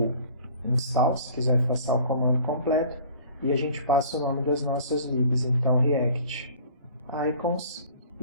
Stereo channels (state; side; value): inverted; both; correlation -0.48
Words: install, se quiser passar o comando completo, e a gente passa o nome das nossas libs, então React Icons,